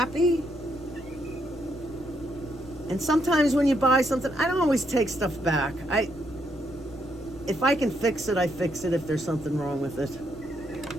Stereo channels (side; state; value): right; noise; rumble, 22 dB below the sound